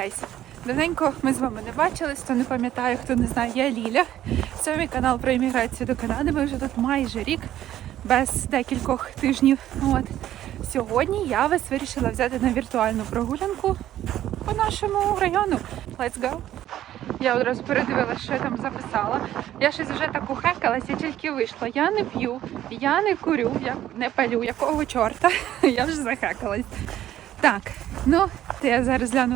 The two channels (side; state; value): left; quieter; 12.5 dB